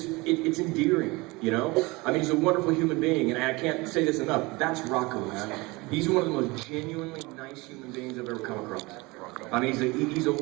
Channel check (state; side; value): quieter; left; 23.8 dB